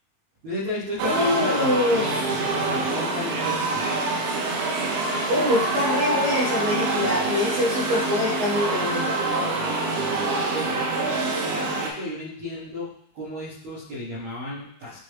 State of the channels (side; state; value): left; late; 20 ms